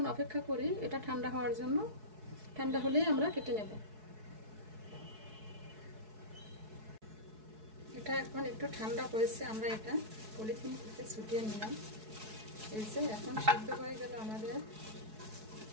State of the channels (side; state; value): left; late; 4.7 ms